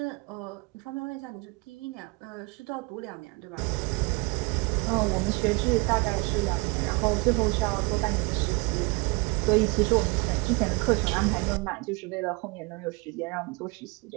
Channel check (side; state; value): left; quieter; 27.5 dB